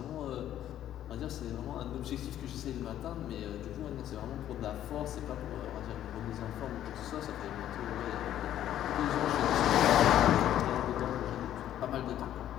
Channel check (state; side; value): quieter; right; 11.6 dB